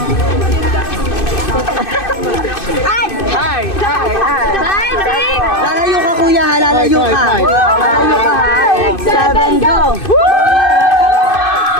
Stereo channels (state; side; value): late; right; 2.6 ms